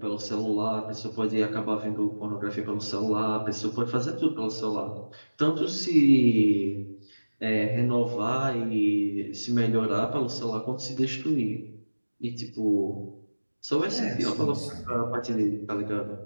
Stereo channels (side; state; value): both; inverted; correlation -1.00